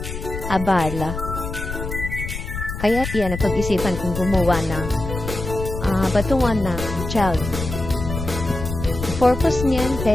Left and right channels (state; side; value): noise; left; rumble, 6 dB below the sound